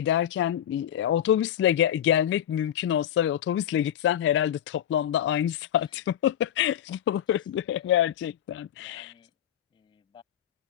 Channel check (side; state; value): right; quieter; 10.7 dB